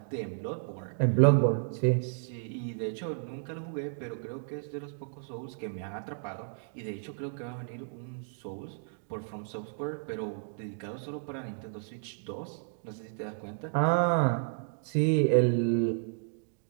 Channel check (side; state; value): left; silent; digital silence